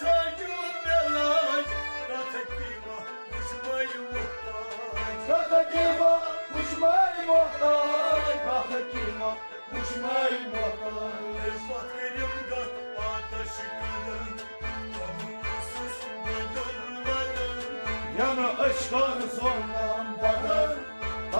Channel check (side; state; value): both; inverted; correlation -1.00